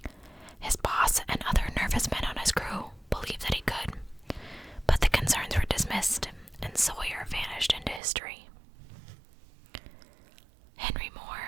His boss and other nervous men on his crew believed that he could, but the concerns were dismissed, and Sawyer vanished into history. Henry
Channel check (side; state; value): left; drops out; at 8.0 s